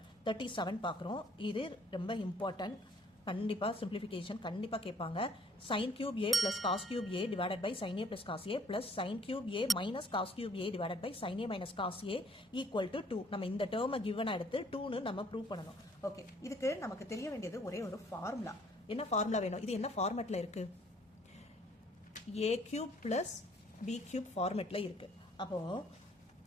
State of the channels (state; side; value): normal; both; correlation 0.60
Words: 37 பார்க்குறோம். இது ரொம்ப இம்பார்ட்டன்ட். கண்டிப்பாக சிம்பிளிஃபிகேஷன் கண்டிப்பாக கேட்பாங்க. Sine cube A plus cos cube A divided by sine A plus cos A plus sine cube A minus cos cube A divided by sine A minus cos A equal to 2. நம்ம இந்த டேர்மை கிவனா எடுத்து 2ன்னு நம்ம ப்ரூவ் பண்ணணும். ஓகே, இதுக்கு நமக்கு தெரிய வேண்டியது ஒரே ஒரு ஃபார்முலா. என்ன ஃபார்முலா வேணும்? இது என்ன ஃபார்மேட்டில் இருக்கு? A cube plus B cube ஃபார்மேட்டில் இருக்குது. அப்போது